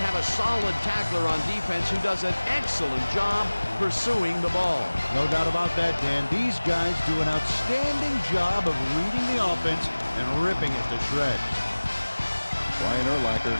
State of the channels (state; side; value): inverted; both; correlation -1.00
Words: have a solid tackler on defense who does an excellent job pursuing the ball. No doubt about that, Dan. These guys do an outstanding job of reading the offense and ripping it to shreds. Brian Urlacher